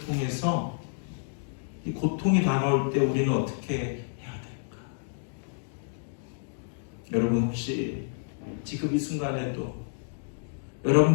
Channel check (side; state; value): right; silent; digital silence